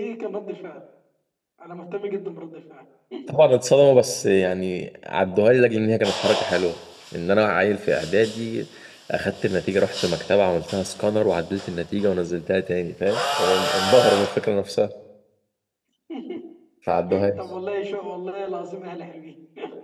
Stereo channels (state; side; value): identical; both; correlation 1.00